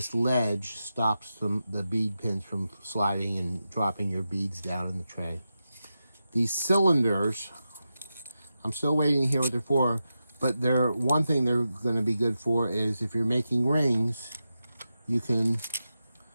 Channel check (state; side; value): inverted; both; correlation -0.90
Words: ledge stops the bead pins from sliding and dropping your beads down in the tray. These cylinders, I'm still waiting to hear what they're for, but one thing they're going to be good for is if you're making rings, you can